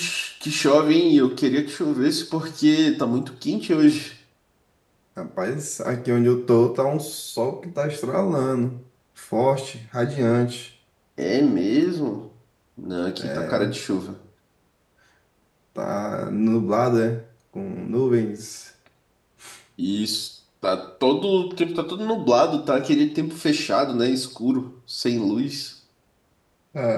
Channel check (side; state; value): both; identical; correlation 1.00